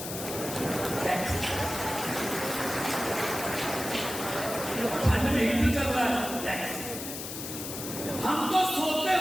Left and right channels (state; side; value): noise; left; hiss, 7 dB below the sound